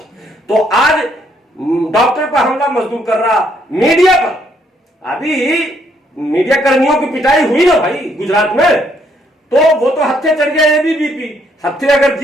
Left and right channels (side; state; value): both; normal; correlation 0.70